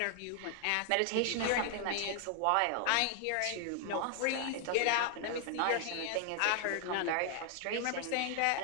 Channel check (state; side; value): different; both; correlation 0.00